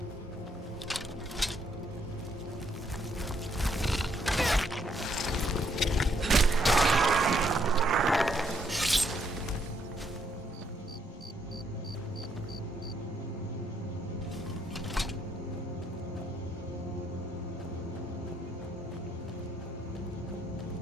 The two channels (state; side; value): normal; both; correlation 0.72